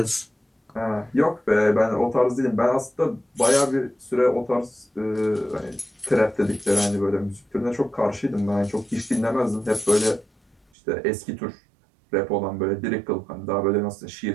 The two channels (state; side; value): drops out; left; at 10.6 s